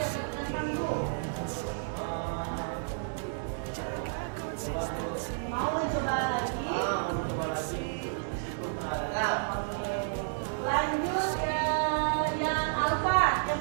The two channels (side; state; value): left; silent; digital silence